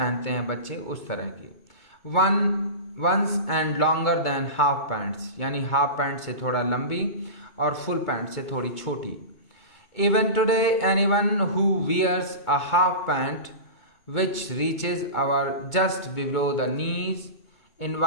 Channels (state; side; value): late; right; 2.2 ms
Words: हैं बच्चे उस तरह की। Once and longer than half pants, यानी हाफ पैंट से थोड़ा लंबी और फुल पैंट से थोड़ी छोटी। Even today anyone who wears a half pant which reaches our just below the knees